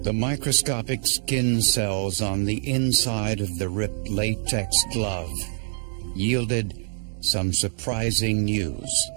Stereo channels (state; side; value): silent; left; digital silence